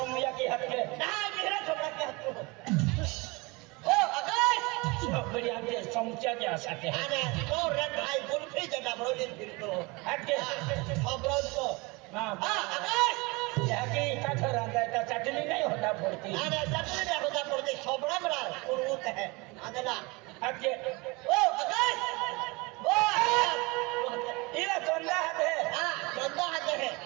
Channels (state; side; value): quieter; left; 25.8 dB